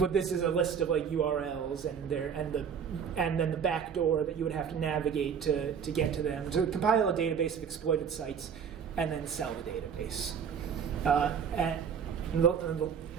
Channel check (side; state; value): left; quieter; 7.2 dB